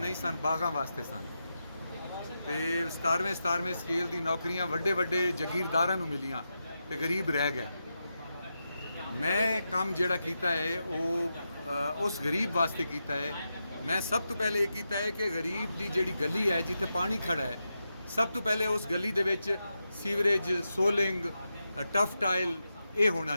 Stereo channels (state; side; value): inverted; both; correlation -0.88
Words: ਸਨ, ਬਾਗਾਂ ਵਾਸਤੇ ਸਨ। ਤੇ 17ਵੇਂ ਸਕੇਲ ਦੀ ਨੌਕਰੀਆਂ ਵੱਡੇ ਜਾਗੀਰਦਾਰਾਂ ਨੂੰ ਮਿਲੀਆਂ ਤੇ ਗਰੀਬ ਰਹਿ ਗਿਆ। ਮੈਂ ਕੰਮ ਜਿਹੜਾ ਕੀਤਾ ਹੈ ਉਹ ਉਸ ਗਰੀਬ ਵਾਸਤੇ ਕੀਤਾ ਹੈ। ਮੈਂ ਸਭ ਤੋਂ ਪਹਿਲੇ ਇਹ ਕੀਤਾ ਹੈ ਕਿ ਗਰੀਬ ਦੀ ਜਿਹੜੀ ਗਲੀ ਹੈ ਜਿੱਥੇ ਪਾਣੀ ਖੜਾ ਹੈ, ਸਭ ਤੋਂ ਪਹਿਲੇ ਉਸ ਗਲੀ ਦੇ ਵਿੱਚ ਸੀਵਰੇਜ, ਸੋਲਿੰਗ, ਟਫ ਟਾਇਲ ਇਹ ਹੋਣਾ